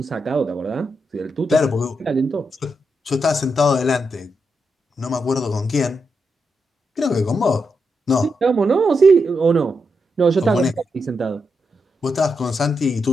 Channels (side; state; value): both; normal; correlation 0.84